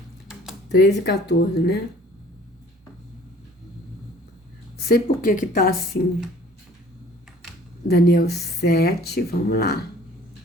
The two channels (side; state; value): both; normal; correlation 0.52